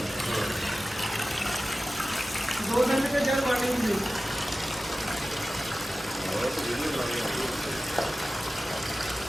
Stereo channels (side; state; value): both; normal; correlation 0.96